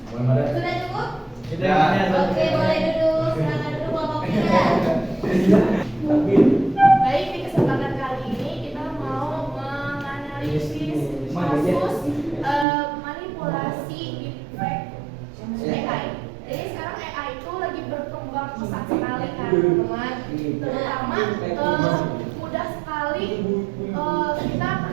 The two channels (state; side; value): drops out; left; at 12.7 s